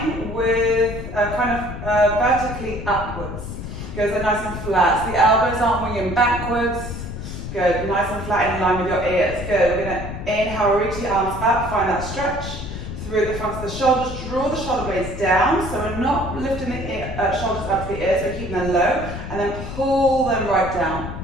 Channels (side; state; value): left; noise; rumble, 8 dB below the sound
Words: with vertically upwards. Good, so nice and flat. So the elbows aren't winging backwards. Good, nice and flat in line with your ears. Good, we're going to inhale, reach the arms up, find that stretch through the front of the shoulders. Draw the shoulder blades down, so we're not lifting the shoulders up to the ears, we're keeping them low. And then pull them right down.